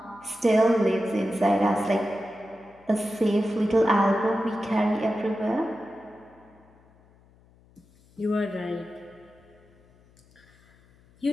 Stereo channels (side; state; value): left; noise; hum, 29 dB below the sound